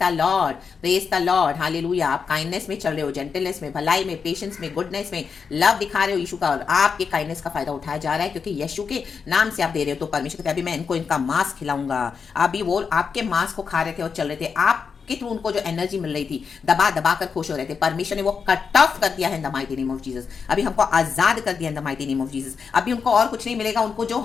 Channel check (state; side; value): quieter; right; 5.8 dB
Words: the Lord, praise the Lord, hallelujah. आप काइंडनेस में चल रहे हो, जेंटलनेस में, भलाई में, पेशेंस में, गुडनेस में, लव दिखा रहे हो यीशु का, और आपके काइंडनेस का फायदा उठाया जा रहा है, क्योंकि यीशु के नाम से आप दे रहे हो। तो परमेश्वर कहते हैं, अभी मैं इनको इनका मांस खिलाऊंगा। अभी वो आपके मांस को खा रहे थे और चल रहे थे, आप के थ्रू उनको जो एनर्जी मिल रही थी, दबा दबा कर खुश हो रहे थे, परमेश्वर ने वो कट ऑफ कर दिया है इन the mighty name of Jesus. अभी हमको आजाद कर दिया इन the mighty name of Jesus. अभी उनको और कुछ नहीं मिलेगा, उनको जो